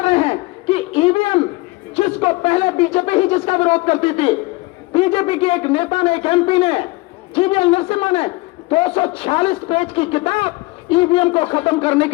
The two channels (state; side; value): quieter; right; 22.5 dB